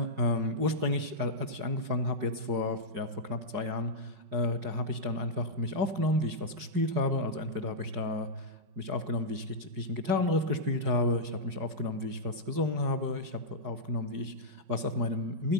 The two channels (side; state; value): left; late; 4.8 ms